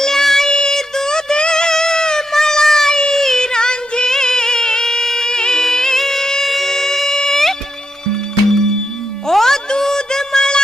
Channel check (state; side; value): normal; both; correlation 0.84